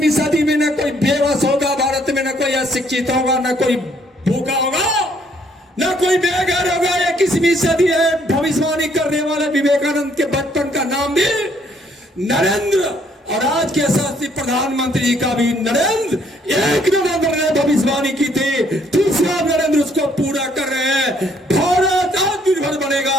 सदी में न कोई बेबस होगा भारत में, न कोई अशिक्षित होगा, न कोई भूखा होगा, न कोई बेघर होगा। 21वीं सदी है। भविष्यवाणी करने वाले विवेकानंद के बचपन का नाम भी नरेंद्र, और आज के यशस्वी प्रधानमंत्री जी का भी नरेंद्र। 1 नवंबर ने भविष्यवाणी की थी, दूसरा नरेंद्र उसको पूरा कर रहे हैं। भारत आत्मनिर्भर बनेगा,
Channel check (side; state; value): both; normal; correlation 0.66